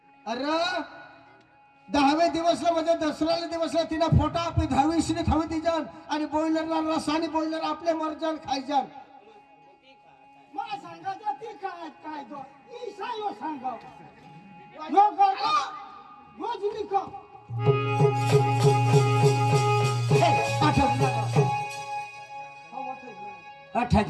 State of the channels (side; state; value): both; identical; correlation 1.00